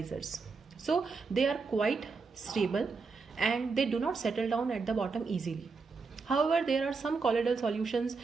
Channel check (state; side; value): quieter; left; 4.5 dB